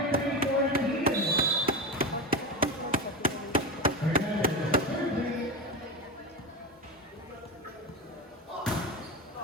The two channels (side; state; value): both; normal; correlation 0.20